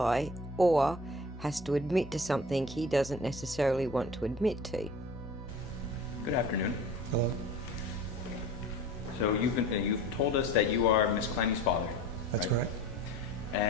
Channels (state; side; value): normal; both; correlation 0.41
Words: or has to admit to something he doesn't necessarily want to admit to. Good afternoon. Hello? So you've told us that you are Miss Clenney's father. That's right? correct.